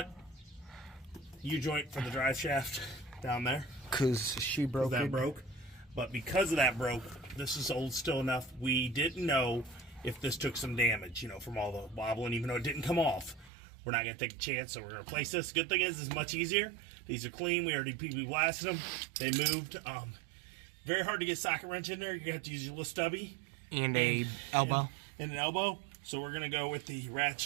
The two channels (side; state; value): left; drops out; at 13.5 s